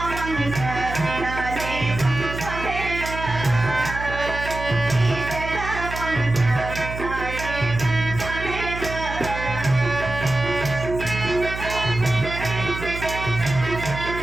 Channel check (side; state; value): right; noise; hum, 8 dB below the sound